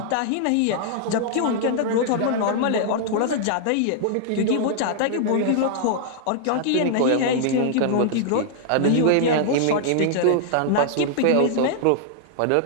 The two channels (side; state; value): both; different; correlation -0.01